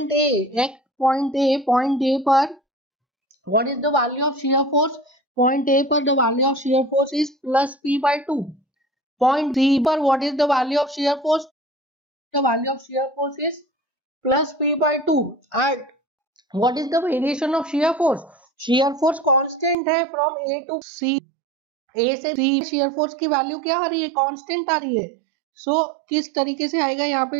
ए पर what is the value of shear force. Point A पर the value of shear force is plus P/2. Point C पर what is the value of shear force, the value of shear force is plus P/2. and what is the variation of shear force, shear force constant है from A to C. A से C shear force की value क्या आ रही है, constant आ रही है. सो किस तरीके से आएगा यहाँ पे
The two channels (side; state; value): left; drops out; at 19.8 s